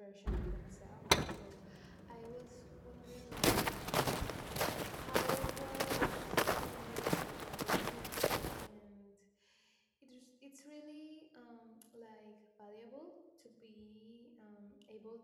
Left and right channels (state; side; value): identical; both; correlation 1.00